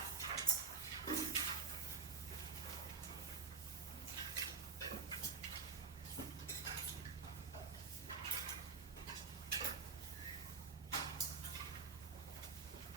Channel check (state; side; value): quieter; left; 5.1 dB